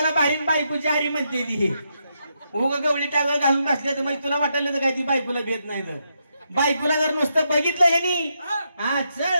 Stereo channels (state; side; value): inverted; both; correlation -0.81